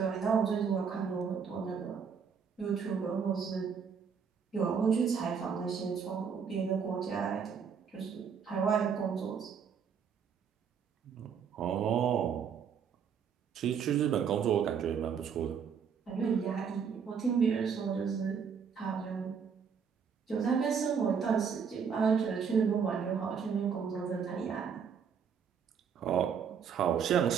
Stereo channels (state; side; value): quieter; left; 6.8 dB